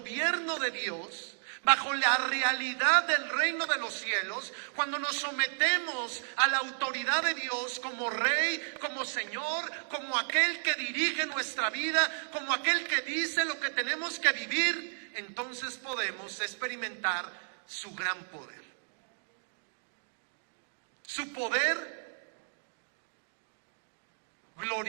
de Dios, bajo la realidad del reino de los cielos, cuando nos sometemos a la autoridad de Dios como Rey, como Señor, como aquel que dirige nuestra vida, como aquel que dice lo que tenemos que vivir, entonces podemos experimentar su gran poder. Su poder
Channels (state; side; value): silent; left; digital silence